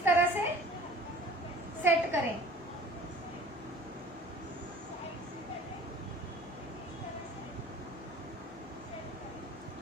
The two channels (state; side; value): normal; both; correlation 0.47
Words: तरह से सेट करें।